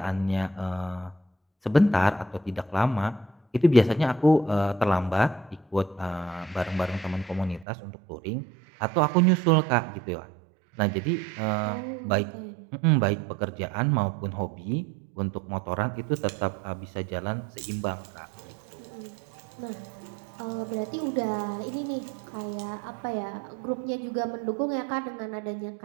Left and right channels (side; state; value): left; drops out; at 7.7 s